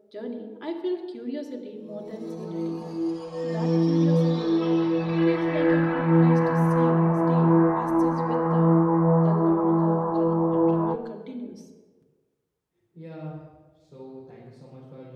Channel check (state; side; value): identical; both; correlation 1.00